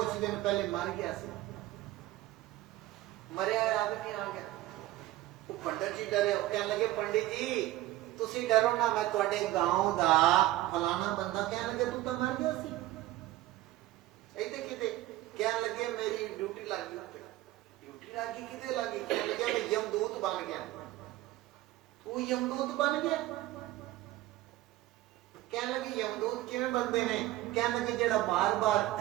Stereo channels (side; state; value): left; quieter; 15.8 dB